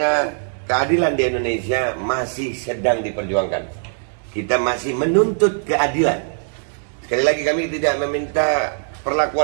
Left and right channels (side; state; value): left; silent; digital silence